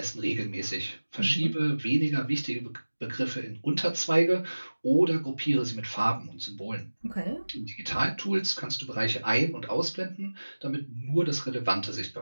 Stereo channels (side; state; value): both; inverted; correlation -1.00